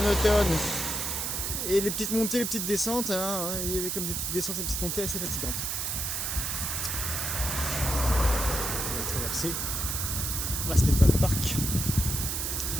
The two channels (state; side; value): noise; right; hiss, 1 dB below the sound